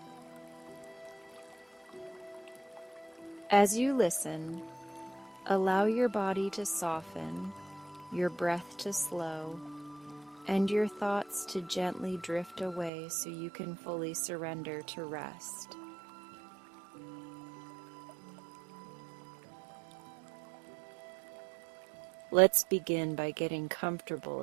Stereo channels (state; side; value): drops out; left; at 12.9 s